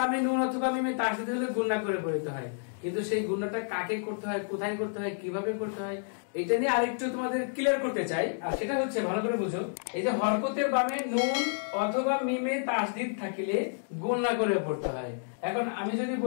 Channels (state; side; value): silent; right; digital silence